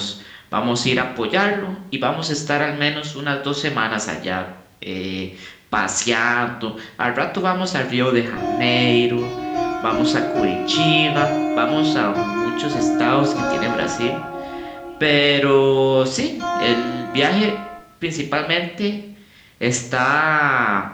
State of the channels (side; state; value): both; identical; correlation 1.00